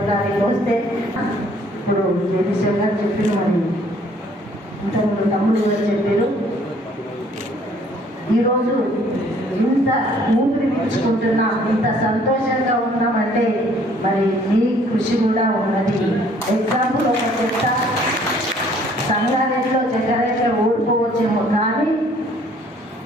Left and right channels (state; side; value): normal; both; correlation 0.59